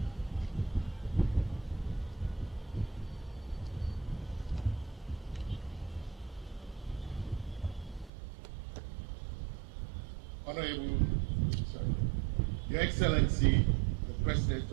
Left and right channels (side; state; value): left; drops out; at 8.1 s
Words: Honorable, Your Excellency, the President